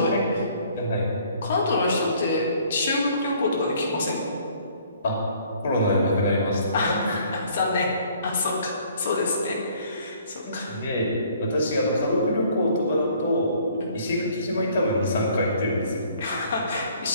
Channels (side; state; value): both; inverted; correlation -0.59